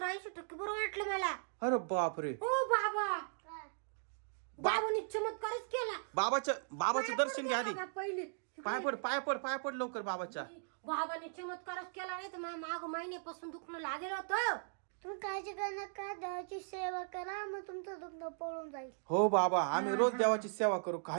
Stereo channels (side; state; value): left; silent; digital silence